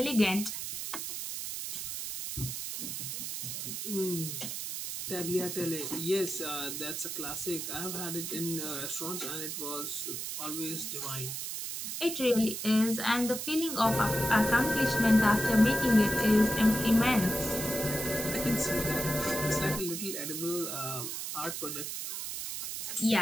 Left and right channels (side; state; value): right; noise; hiss, 5 dB below the sound